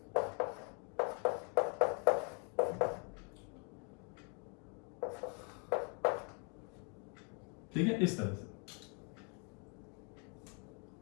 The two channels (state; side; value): quieter; right; 35.4 dB